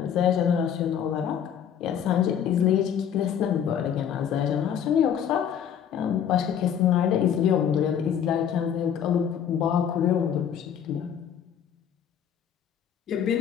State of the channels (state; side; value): quieter; right; 8.7 dB